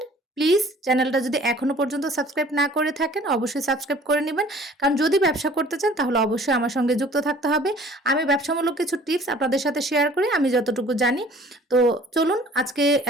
প্লিজ চ্যানেলটা যদি এখনো পর্যন্ত সাবস্ক্রাইব না করে থাকেন অবশ্যই সাবস্ক্রাইব করে নেবেন, কারণ যদি ব্যবসা করতে চান তাহলে অবশ্যই আমার সঙ্গে যুক্ত থাকতে হবে। আমি ব্যবসামূলক কিছু টিপস আপনাদের সাথে শেয়ার করি আমি যতটুকু জানি। তো চলুন আজকে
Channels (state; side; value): normal; both; correlation 0.51